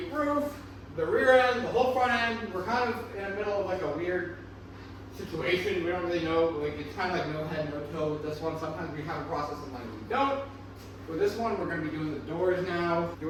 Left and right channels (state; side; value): identical; both; correlation 1.00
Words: roof, the rear end, the whole front end. We're kind of in the middle of like a weird situation. We don't really know, like it's kind of like no head, no toe with this one. Sometimes we have a process, sometimes we don't. With this one, we're going to be doing the doors now,